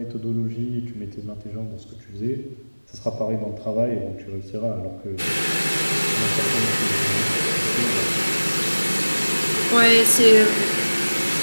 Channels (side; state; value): both; inverted; correlation -1.00